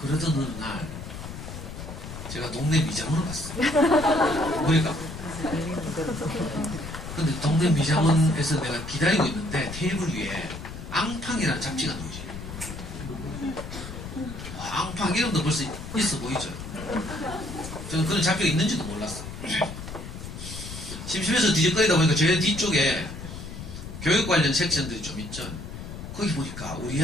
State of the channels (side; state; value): left; noise; rumble, 10 dB below the sound